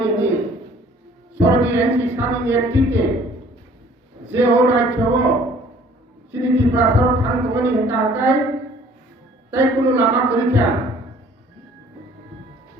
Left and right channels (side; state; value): both; normal; correlation 0.54